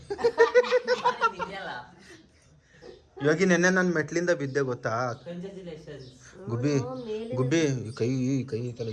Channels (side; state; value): both; identical; correlation 1.00